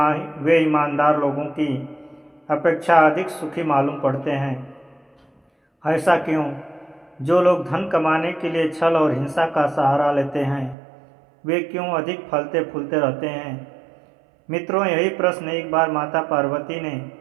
ईमानदार लोगों की अपेक्षा अधिक सुखी मालूम पड़ते हैं। ऐसा क्यों? जो लोग धन कमाने के लिए छल और हिंसा का सहारा लेते हैं, वे क्यों अधिक फलते फूलते रहते हैं? मित्रों, यही प्रश्न एक बार माता पार्वती ने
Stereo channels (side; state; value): left; drops out; at 10.8 s